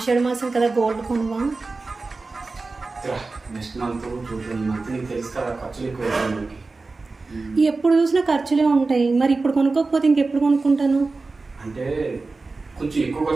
మాసం కదా gold కొనవా? Next month 2 month నీకు తెలుసు కదా ఖర్చులు ఎక్కువ. ఎప్పుడు చూసినా ఖర్చులే ఉంటాయి. మరి ఇప్పుడు కొనుక్కోకపోతే ఇంకెప్పుడు కొనుక్కుంటాను? అంటే కొంచెం ఎక్కువ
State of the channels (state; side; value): quieter; left; 3.7 dB